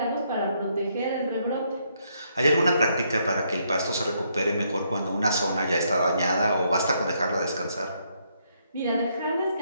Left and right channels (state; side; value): inverted; both; correlation -0.74